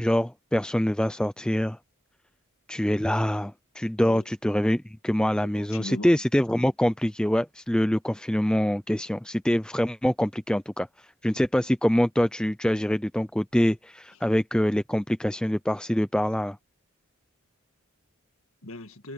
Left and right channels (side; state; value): both; normal; correlation 0.98